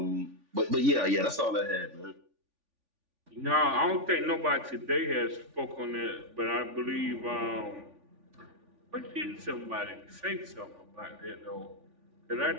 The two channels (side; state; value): left; late; 3.5 ms